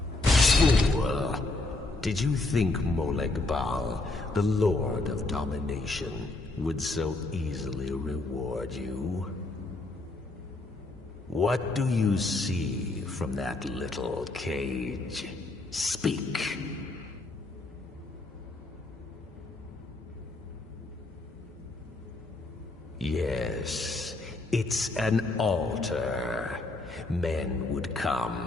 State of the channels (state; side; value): quieter; right; 3.0 dB